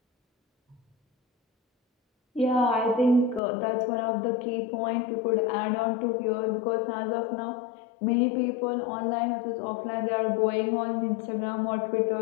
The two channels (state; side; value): drops out; right; at 3.4 s